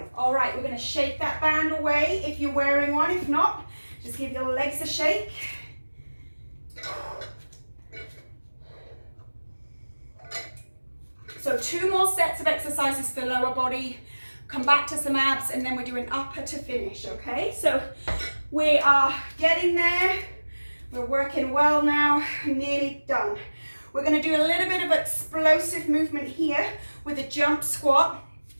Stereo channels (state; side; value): inverted; both; correlation -1.00